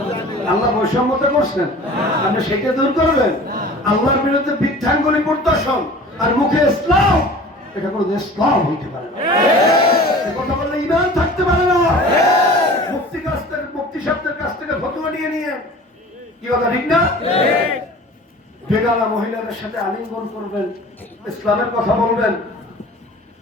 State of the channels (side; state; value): both; normal; correlation 0.42